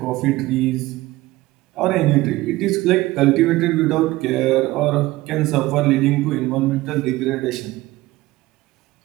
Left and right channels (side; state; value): left; quieter; 18.5 dB